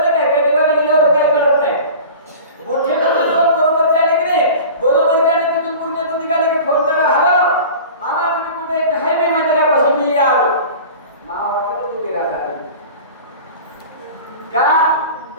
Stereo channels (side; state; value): both; inverted; correlation -0.38